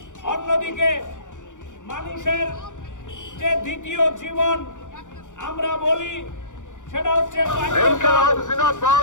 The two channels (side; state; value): right; late; 0.86 ms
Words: অন্যদিকে মানুষের যে দ্বিতীয় জীবন আমরা বলি সেটা হচ্ছে